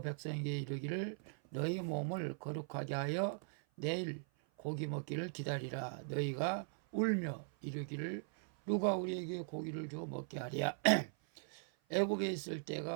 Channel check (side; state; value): left; silent; 51 dB below the other